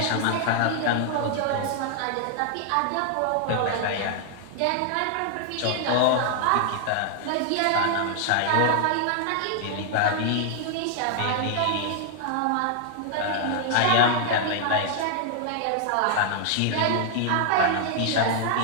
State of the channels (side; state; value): both; different; correlation 0.00